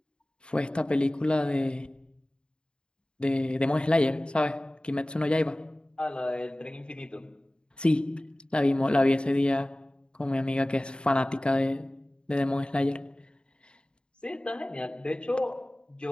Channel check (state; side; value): late; right; 0.052 ms